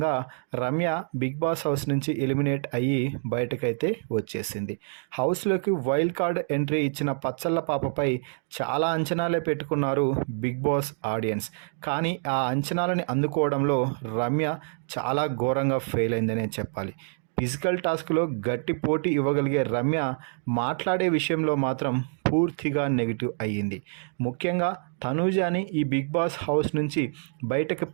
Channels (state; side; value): silent; left; 59 dB below the other